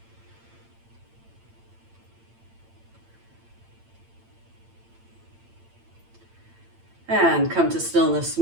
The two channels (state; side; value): late; left; 8.8 ms